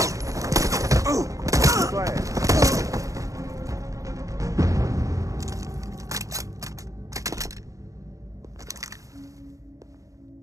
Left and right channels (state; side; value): late; left; 0.16 ms